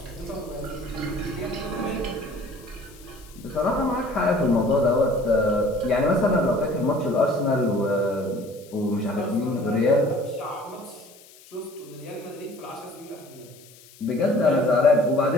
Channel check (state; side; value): noise; left; hiss, 24 dB below the sound